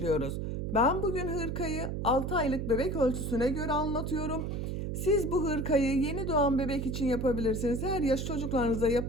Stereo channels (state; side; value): noise; right; hum, 3 dB below the sound